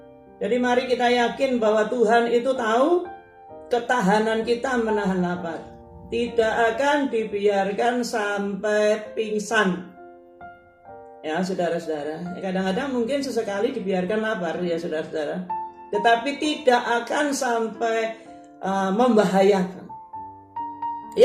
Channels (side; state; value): both; identical; correlation 1.00